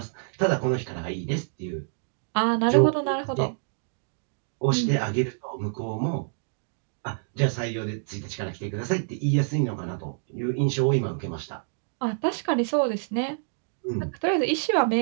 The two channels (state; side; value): silent; left; digital silence